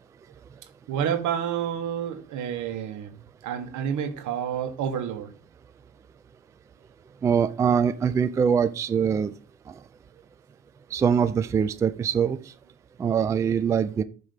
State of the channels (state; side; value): quieter; left; 7.2 dB